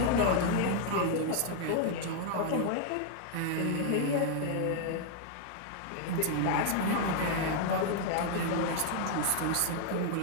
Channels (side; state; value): both; different; correlation 0.00